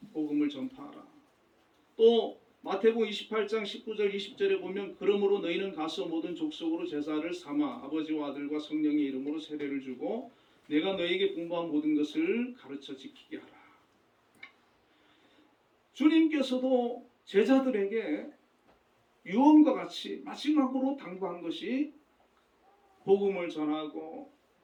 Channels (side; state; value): both; identical; correlation 1.00